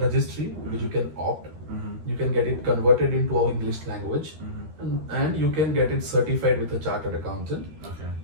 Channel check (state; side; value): late; left; 13 ms